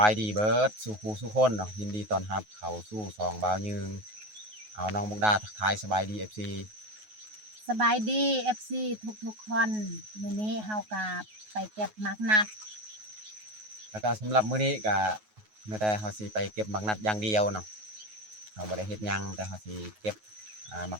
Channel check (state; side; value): late; left; 9.4 ms